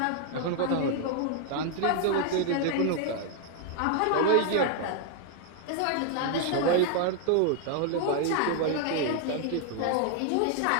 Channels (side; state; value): both; different; correlation 0.00